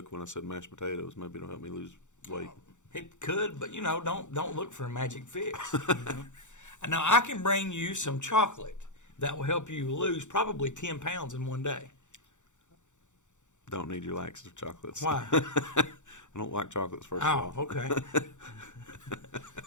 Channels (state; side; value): late; right; 0.85 ms